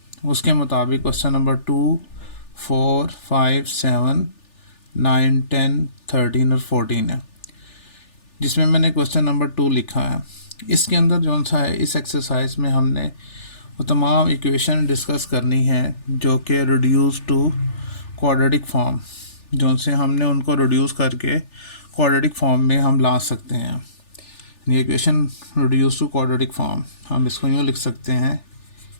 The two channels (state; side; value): late; right; 3.4 ms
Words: उसके मुताबिक क्वेश्चन नंबर 2, 4, 5, 7, 9, 10, 13 और 14 है, जिसमें मैंने क्वेश्चन नंबर 2 लिखा है। इसके अंदर जौन सा है, इस एक्सरसाइज में हमने वो तमाम इक्वेशन डिस्कस करनी है जो कि रिड्यूस टू क्वाड्रेटिक फॉर्म, जौन से हमने उनको रिड्यूस करके क्वाड्रेटिक फॉर्म में हम ला सकते हैं। ये equation reduce to quadratic form हम इसको यूँ लिख सकते हैं,